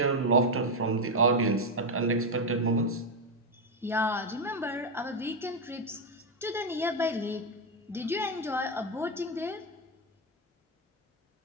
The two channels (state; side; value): normal; both; correlation 0.06